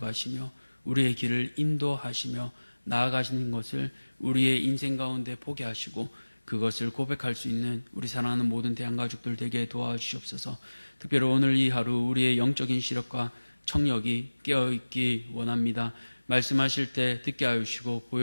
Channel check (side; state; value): both; inverted; correlation -1.00